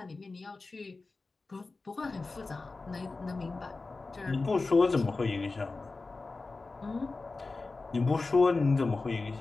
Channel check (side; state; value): right; quieter; 3.7 dB